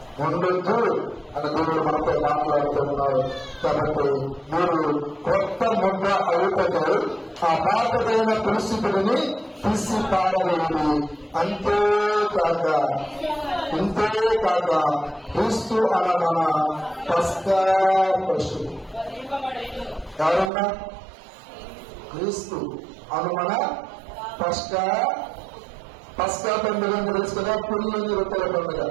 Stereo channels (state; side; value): drops out; left; at 20.5 s